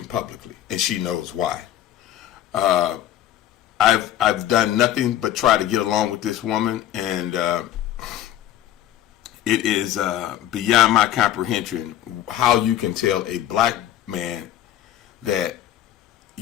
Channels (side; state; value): right; quieter; 12.3 dB